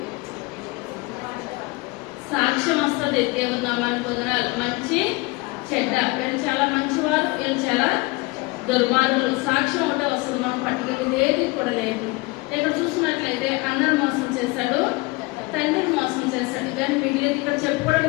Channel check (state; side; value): quieter; right; 24.4 dB